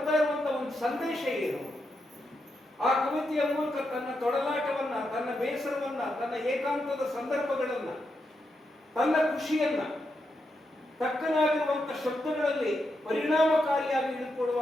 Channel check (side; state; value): both; normal; correlation 0.84